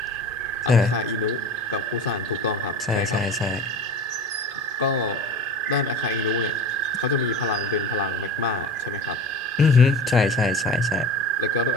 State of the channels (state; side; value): normal; both; correlation 0.35